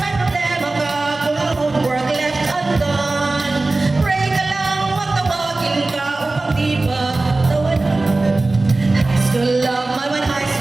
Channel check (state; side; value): quieter; left; 3.2 dB